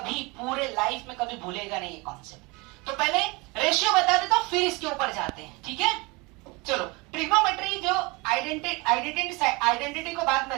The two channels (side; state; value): left; quieter; 26.2 dB